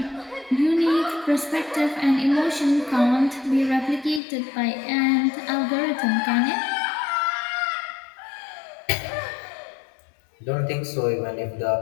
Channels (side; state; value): right; drops out; at 4.2 s